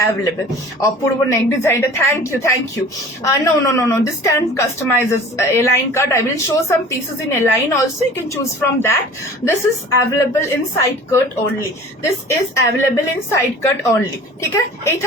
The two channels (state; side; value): normal; both; correlation 0.44